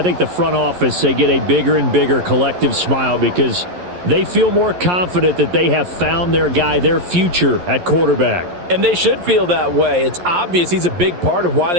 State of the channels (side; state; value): left; late; 11 ms